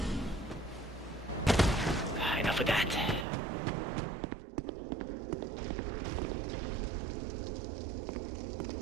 Enough of that.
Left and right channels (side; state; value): left; drops out; at 3.2 s